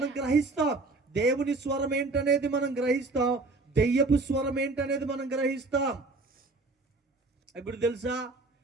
గ్రహిస్తాం దేవుని స్వరం ఏంటనేది, మనం గ్రహిస్తాం దెయ్యపు స్వరం ఏంటనేది మనం గ్రహిస్తాం. ఇప్పుడు తెలుసా?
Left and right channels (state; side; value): quieter; left; 3.4 dB